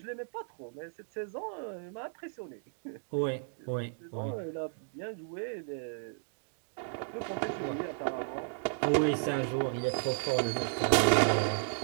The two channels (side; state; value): left; silent; digital silence